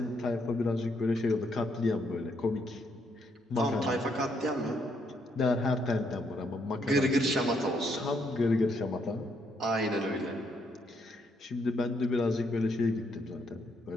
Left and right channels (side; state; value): both; normal; correlation 0.74